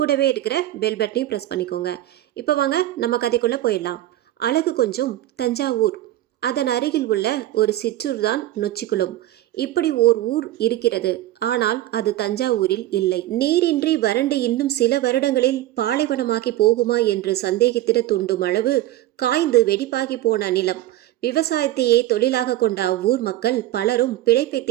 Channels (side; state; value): left; quieter; 14.6 dB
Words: இருக்கிற பெல் பட்டனையும் ப்ரெஸ் பண்ணிக்கோங்க. இப்போ வாங்க நம்ம கதைக்குள்ளே போயிடலாம். அழகு கொஞ்சம் தஞ்சாவூர். அதன் அருகில் உள்ள ஒரு சிற்றூர் தான் நொச்சிக்குளம். இப்படி ஓர் ஊர் இருக்கிறது. ஆனால் அது தஞ்சாவூரில் இல்லை. நீரின்றி வறண்டு இன்னும் சில வருடங்களில் பாலைவனமாகி போகுமா என்று சந்தேகித்திட தூண்டும் அளவு காய்ந்து வெடிப்பாகி போன நிலம். விவசாயத்தையே தொழிலாக கொண்ட அவ்வூர் மக்கள் பலரும் பிழைப்பை